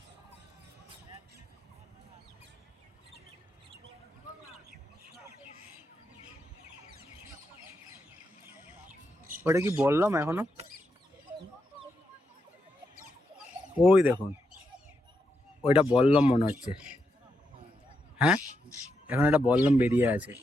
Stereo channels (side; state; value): both; normal; correlation 0.83